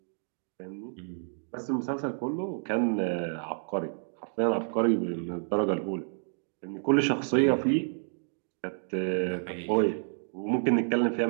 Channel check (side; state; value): left; silent; digital silence